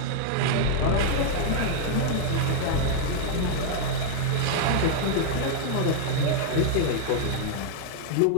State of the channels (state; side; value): different; both; correlation -0.01